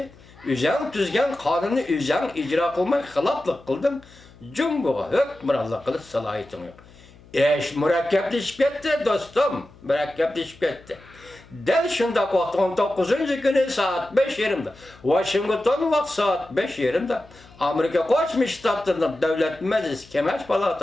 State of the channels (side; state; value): left; noise; hum, 24 dB below the sound